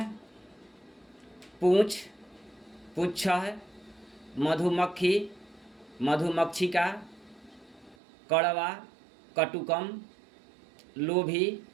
पूंछ पुच्छ है, मधुमक्खी मधुमक्षिका, कड़वा कटुकम, लोभी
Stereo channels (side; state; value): left; drops out; at 8.0 s